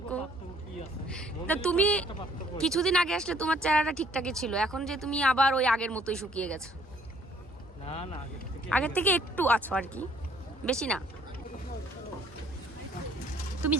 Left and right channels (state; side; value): normal; both; correlation 0.60